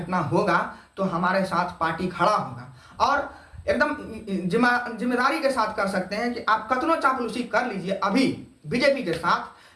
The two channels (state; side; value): identical; both; correlation 1.00